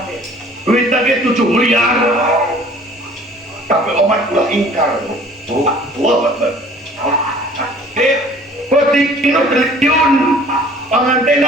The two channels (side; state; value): both; normal; correlation 0.51